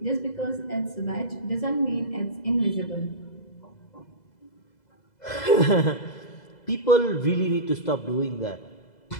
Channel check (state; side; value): late; right; 2.0 ms